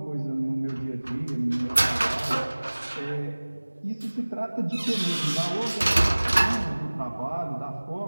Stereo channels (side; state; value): both; inverted; correlation -1.00